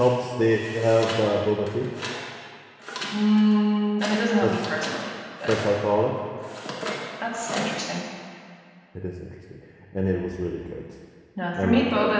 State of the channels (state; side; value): identical; both; correlation 1.00